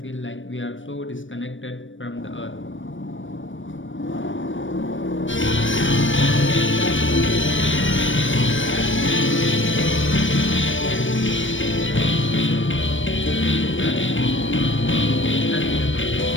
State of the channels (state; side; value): late; right; 0.56 ms